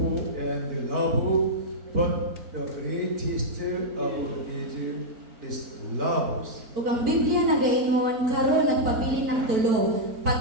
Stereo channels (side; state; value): left; late; 4.5 ms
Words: and love. But the greatest of these is love." Ug ang Biblia nagaingon karon nagpabilin ng tulo,